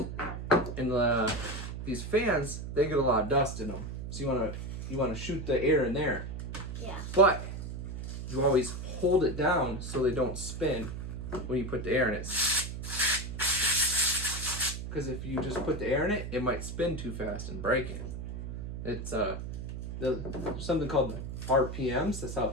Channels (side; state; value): right; noise; hum, 7 dB below the sound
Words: these fans, they get a lot of dust in them. So you want to shoot the air in there. Yeah. But you always hold it down so they don't spin when you put the air in it. Because if you just put the air in it, it might spin too fast and break it. It's there's something called RPMs. That's how